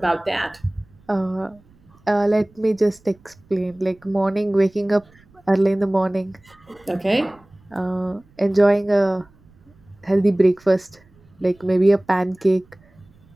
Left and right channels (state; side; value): noise; right; rumble, 30 dB below the sound